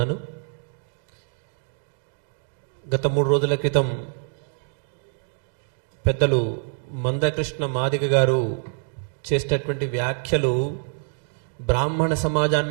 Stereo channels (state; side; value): silent; left; 60 dB below the other